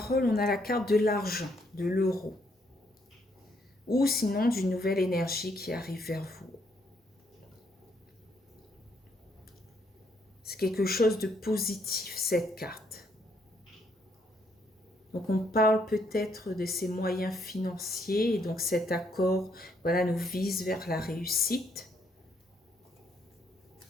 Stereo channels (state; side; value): normal; both; correlation 0.72